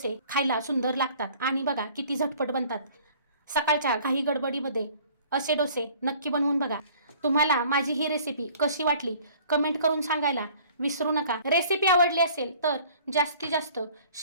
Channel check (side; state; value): both; inverted; correlation -0.52